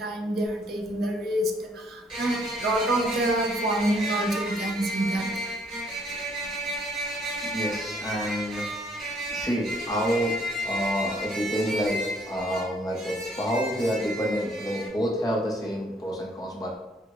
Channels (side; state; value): both; normal; correlation 0.65